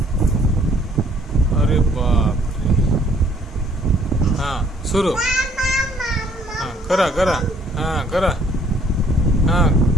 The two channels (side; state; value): both; normal; correlation 0.62